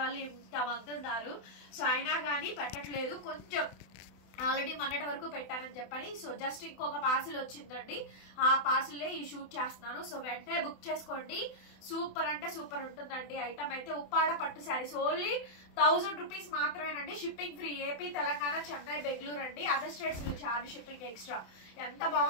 వాళ్ళు ఇంతమంది ఉన్నారు. సో అయినా కానీ పెట్టట్లేదు. కొంచెం ఆల్రెడీ మొన్నటి వరకు పెట్టానని చెప్పని. సో జస్ట్ ఇంకొక పార్సిల్ వచ్చిందండి. ఆ పార్సిల్లే ఈ షూట్ చేస్తున్నాను. సో వెంటనే బుక్ చేసుకోండి. సూపర్ అంటే సూపర్ ఉంటుందండి ఐటమ్ అయితే. ఉప్పాడ పట్టు శారీస్ ఓన్లీ 1000 రూపీస్ మాత్రమేనండి. Shipping free. AP, Telangana, Chennai, Bengaluru అండి. Other states charge shipping extra. ఎంత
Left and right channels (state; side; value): late; right; 28 ms